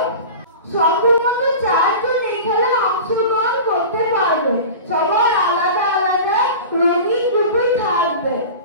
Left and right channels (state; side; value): inverted; both; correlation -0.34